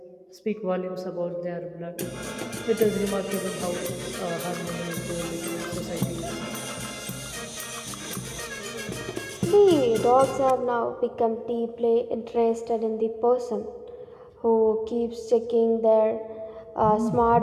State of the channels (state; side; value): identical; both; correlation 1.00